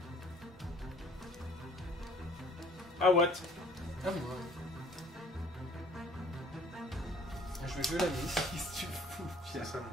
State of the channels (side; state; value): both; normal; correlation 0.55